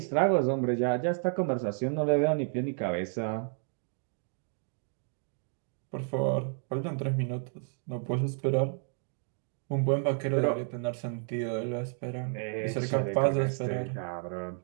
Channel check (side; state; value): left; silent; 57 dB below the other